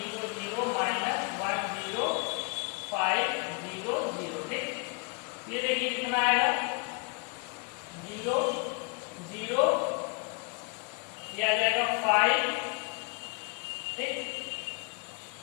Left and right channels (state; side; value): quieter; right; 36.0 dB